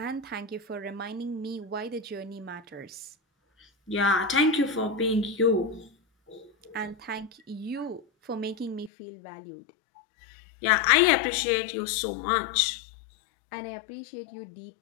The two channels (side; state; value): right; drops out; at 8.9 s